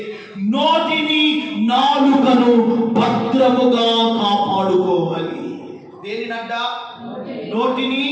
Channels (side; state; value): both; identical; correlation 1.00